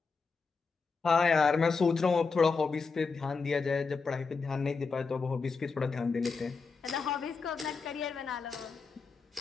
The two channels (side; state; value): right; quieter; 4.7 dB